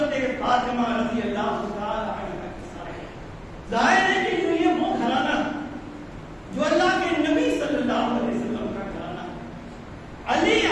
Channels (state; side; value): identical; both; correlation 1.00